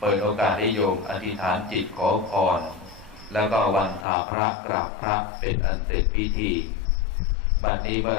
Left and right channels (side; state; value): right; drops out; at 4.0 s